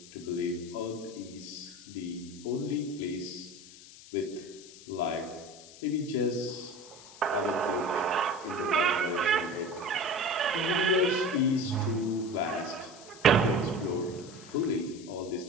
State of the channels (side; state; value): left; noise; hiss, 18 dB below the sound